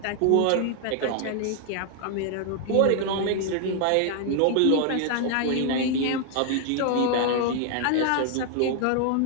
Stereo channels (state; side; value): different; both; correlation 0.00